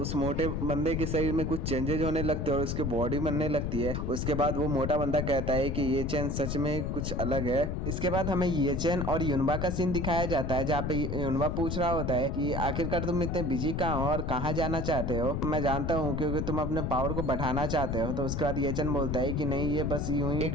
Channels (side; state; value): left; noise; rumble, 1 dB below the sound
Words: मोटे बंदे के शरीर में कुछ चेंजेस होने लगते हैं और उसकी बॉडी बनने लगती है। उसके बाद वो मोटा बंदा कहता है कि येचन सच में कुछ अलग है। इसके बाद हमें येचन और युनबा का सीन दिखाया जाता है जहाँ पे युनबा पूछ रहा होता है कि आखिरकार तुम इतने बिजी कहाँ हो और कहाँ जाना चाहते हो। मैं जानता हूँ क्योंकि तुम अपने पावर को बढ़ाना चाहते हो। तो उसके बाद येचन बोलता है कि नहीं, ये बस यूं ही एक